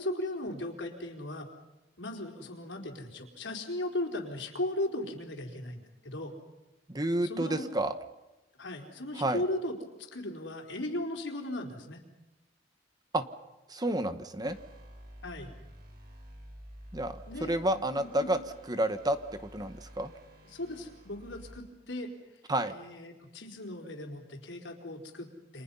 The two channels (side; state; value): both; normal; correlation 0.42